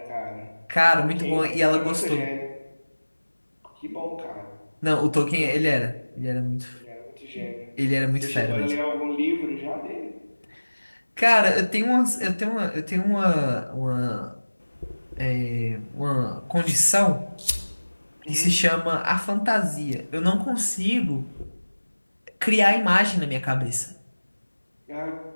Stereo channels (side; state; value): both; inverted; correlation -1.00